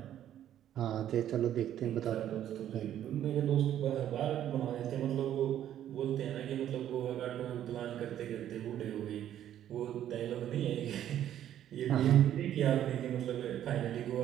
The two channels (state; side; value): quieter; left; 11.2 dB